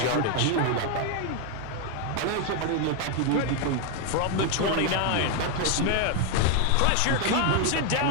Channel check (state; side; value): different; both; correlation 0.01